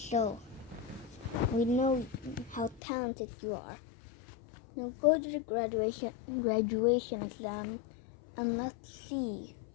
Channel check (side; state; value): right; drops out; at 2.8 s